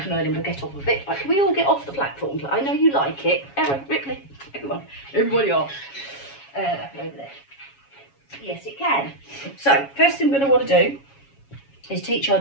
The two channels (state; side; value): late; right; 7.2 ms